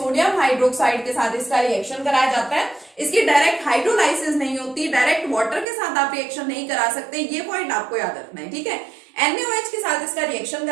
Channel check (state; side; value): drops out; left; at 5.7 s